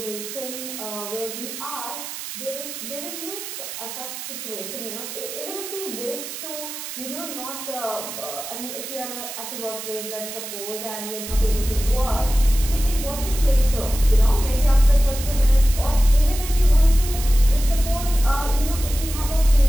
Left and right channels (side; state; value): right; noise; hiss, 9 dB below the sound